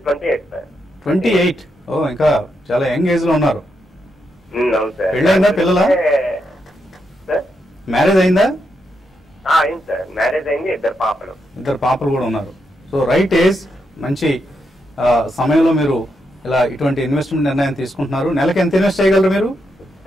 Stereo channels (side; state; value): both; normal; correlation 0.82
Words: సార్. 28. ఓ, ఇంకా చాలా యంగ్ ఏజ్ లో ఉన్నారు. అవును సార్. పెళ్ళైందా? పిల్లలా? మ్యారేజ్ అయిందా? అయింది సార్, మ్యారేజ్ అయింది. ఇద్దరు పాపలు కూడా ఉన్నారు. సో రైట్ ఏజ్, మంచి సమయంలో మీరు ఇలా ఇటువంటి ఇన్వెస్ట్మెంట్ నిర్ణయం తీసుకుంటున్నారు. నెలకి ఎంత ఇన్వెస్ట్ చేయగలరు మీరు?